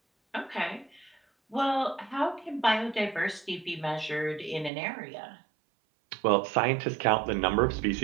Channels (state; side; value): drops out; left; at 4.7 s